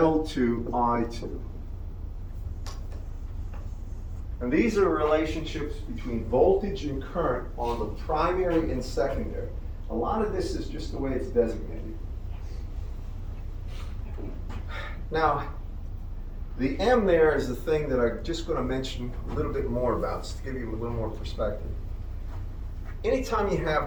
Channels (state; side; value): identical; both; correlation 1.00